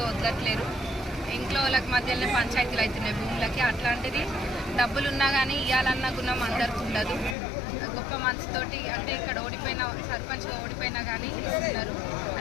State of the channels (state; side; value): drops out; right; at 7.4 s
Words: వదలట్లేరు. ఇంట్లో వాళ్ళకి మధ్యలోనే పంచాయతీలు అవుతున్నాయి భూములకి. అట్లాంటిది డబ్బులు ఉన్నా కానీ ఇవ్వాలన్న గుణం అందరికి ఉండదు. గొప్ప మనసుతోటి అంటే ఇక్కడ ఓడిపోయిన సర్పంచ్గా ఓడిపోయినా కానీ ఇస్తున్నారు.